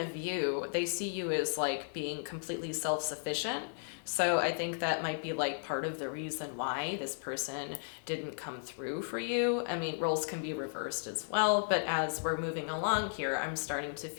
view, they see you as like being completely self-sufficient. So I think that might be like part of the reason why this person didn't come through for you. I mean, roles can be reversed as well, but as we're moving along here, I'm starting to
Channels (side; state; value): right; silent; digital silence